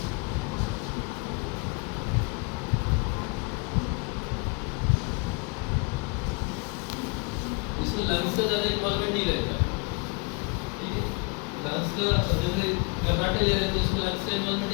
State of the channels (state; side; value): quieter; right; 32.1 dB